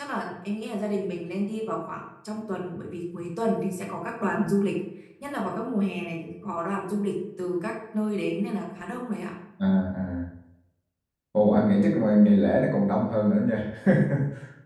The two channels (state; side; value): identical; both; correlation 1.00